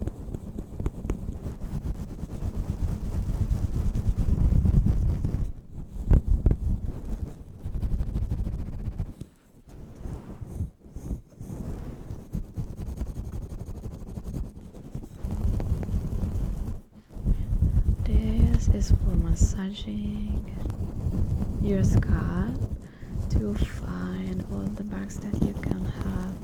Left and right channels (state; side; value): identical; both; correlation 1.00